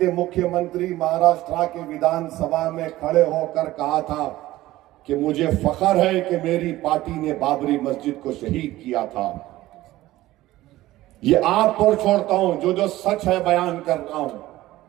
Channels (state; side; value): quieter; left; 16.4 dB